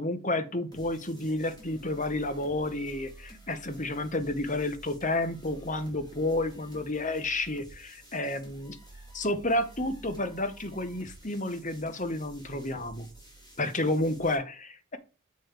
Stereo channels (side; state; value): both; normal; correlation 0.21